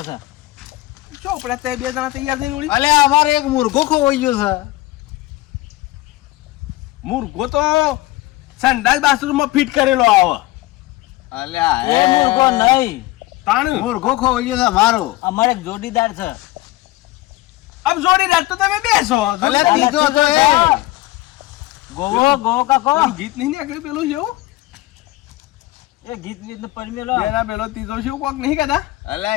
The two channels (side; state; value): right; quieter; 18.3 dB